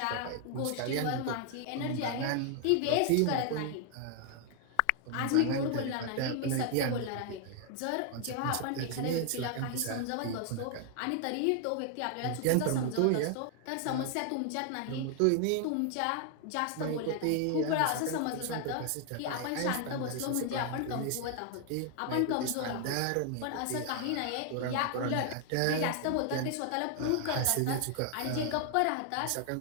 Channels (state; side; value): different; both; correlation 0.00